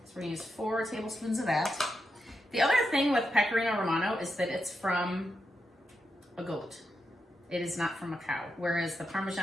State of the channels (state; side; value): normal; both; correlation 0.86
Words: we're gonna use 4 tablespoons of that. The other thing with Pecorino Romano is that it's from a goat. It is not from a cow, whereas the